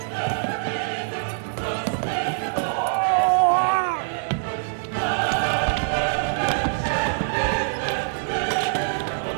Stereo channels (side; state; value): left; silent; digital silence